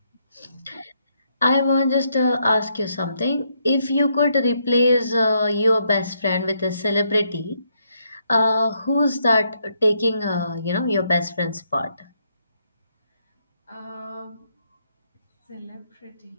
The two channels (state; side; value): inverted; both; correlation -0.75